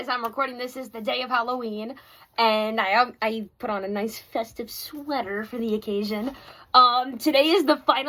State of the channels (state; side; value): identical; both; correlation 1.00